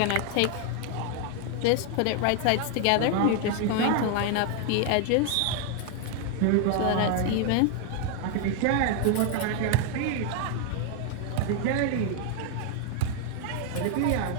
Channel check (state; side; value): different; both; correlation 0.00